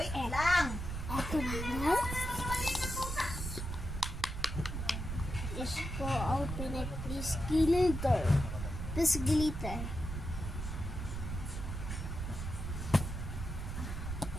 lang. Ito na. Is go open it, please glitter. Please glitter.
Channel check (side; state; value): right; noise; rumble, 5 dB below the sound